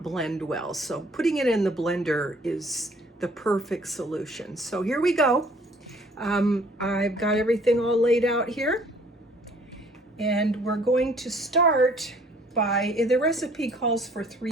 blend well. So putting it in the blender is the perfect solution. So here we go. I've got everything all laid out here, and we're going to start by, the recipe calls for 3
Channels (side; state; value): both; normal; correlation 0.57